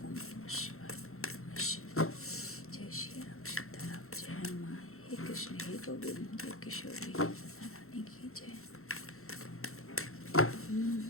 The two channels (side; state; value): right; late; 0.62 ms